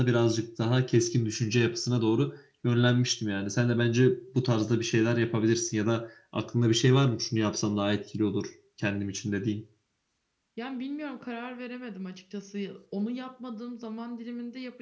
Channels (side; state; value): both; identical; correlation 1.00